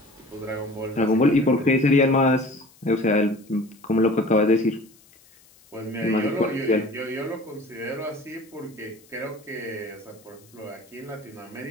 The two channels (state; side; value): noise; left; hiss, 28 dB below the sound